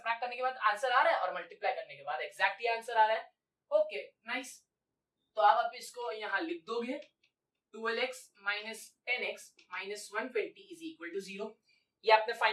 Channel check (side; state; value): both; identical; correlation 1.00